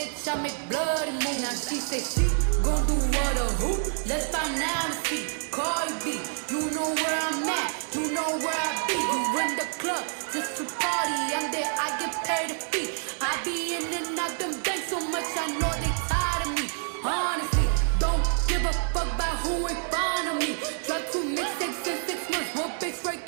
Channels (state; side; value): silent; left; digital silence